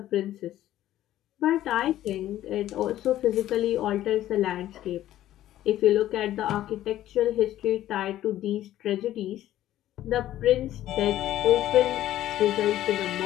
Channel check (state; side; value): quieter; right; 13.4 dB